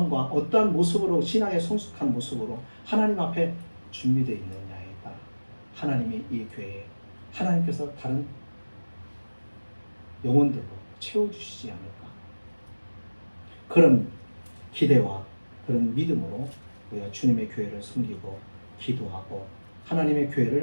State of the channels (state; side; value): inverted; both; correlation -1.00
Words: 어떠한 모습으로 신앙의 성숙한 모습으로 하나님 앞에 준비되어 있느냐에 따라 하나님이 이 교회에 하나님께서 다른 영혼들로 채워주시지 않을까. 그런 기대와 그런 믿음으로 우리가 주님의 교회를 섬기고 기도하고 하나님의